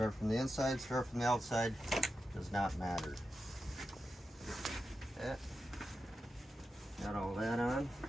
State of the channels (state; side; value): normal; both; correlation 0.90